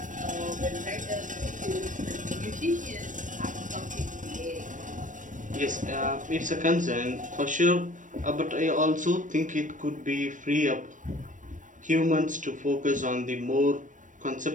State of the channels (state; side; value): late; left; 0.37 ms